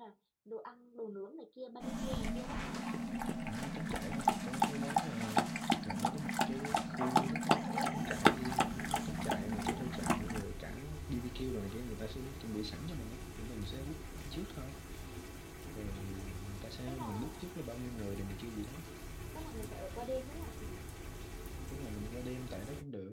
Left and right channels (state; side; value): identical; both; correlation 1.00